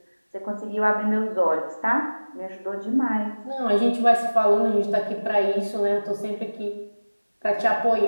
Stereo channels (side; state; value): both; inverted; correlation -1.00